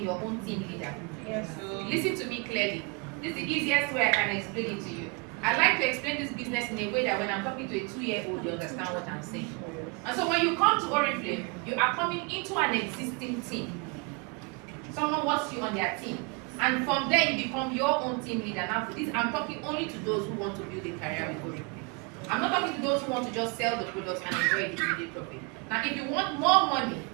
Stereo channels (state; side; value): quieter; left; 30.7 dB